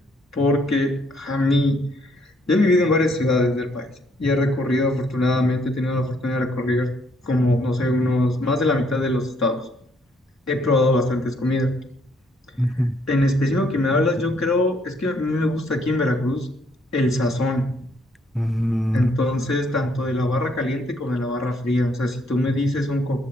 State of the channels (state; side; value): normal; both; correlation 0.69